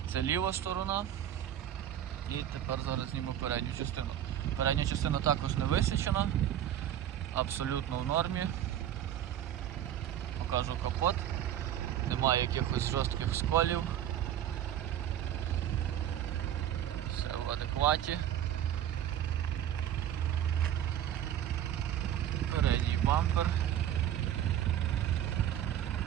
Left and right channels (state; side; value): quieter; left; 11.1 dB